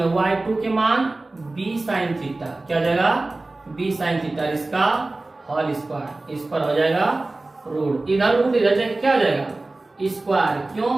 y2 के मान b साइन थीटा, क्या हो जाएगा, b साइन थीटा, इसका होल स्क्वायर। इस पर हो जाएगा रूट, इधर रूट इधर जाएगा, क्या हो जाएगा, स्क्वायर। क्यों,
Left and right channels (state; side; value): quieter; left; 3.0 dB